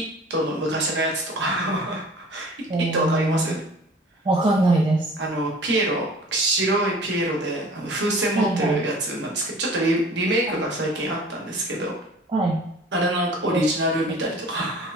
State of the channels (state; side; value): normal; both; correlation 0.46